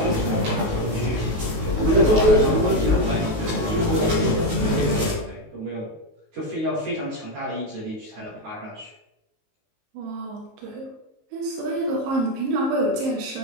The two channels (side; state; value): left; late; 19 ms